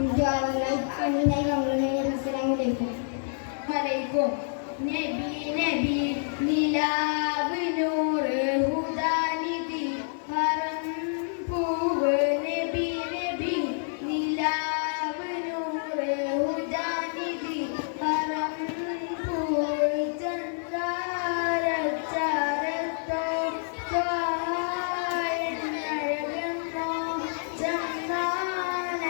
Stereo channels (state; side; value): silent; right; 59 dB below the other